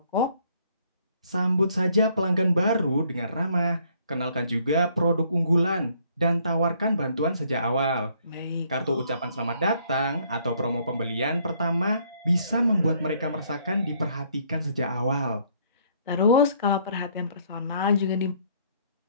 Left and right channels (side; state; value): both; inverted; correlation -0.65